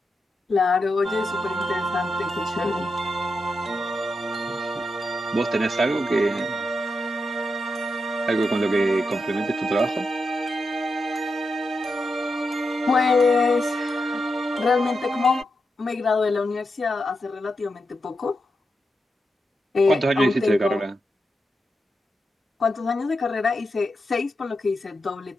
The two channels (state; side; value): normal; both; correlation 0.87